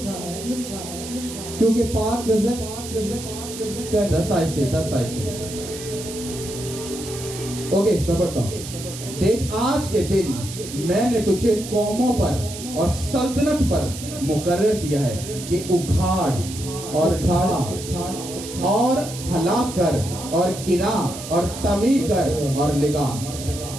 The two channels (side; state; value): right; noise; hiss, 11 dB below the sound